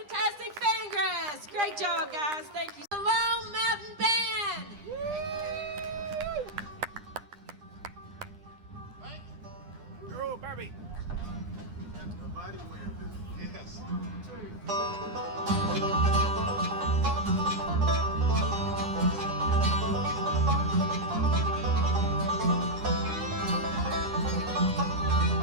Fangrass. Great job, guys. Thank you. The Lone Mountain Band. Girl, Barbie. Yes.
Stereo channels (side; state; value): left; late; 9.9 ms